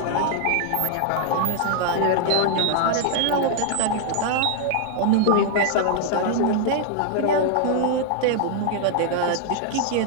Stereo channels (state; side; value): different; both; correlation 0.00